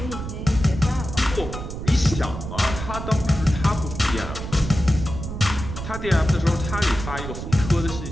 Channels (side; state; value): right; noise; rumble, 7 dB below the sound